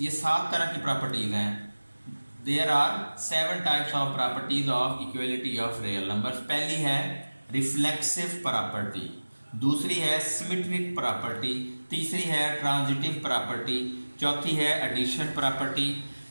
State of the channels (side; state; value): both; inverted; correlation -1.00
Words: 7 तरह की प्रॉपर्टीज़ हैं। There are 7 types of properties of equality of real numbers। पहली है रिफ्लेक्सिव प्रॉपर्टी, दूसरी है सिमेट्रिक प्रॉपर्टी, तीसरी है ट्रांजिटिव प्रॉपर्टी, चौथी है एडिशन प्रॉपर्टी,